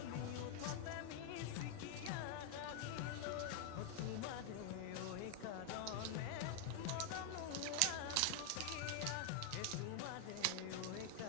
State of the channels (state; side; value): different; both; correlation 0.00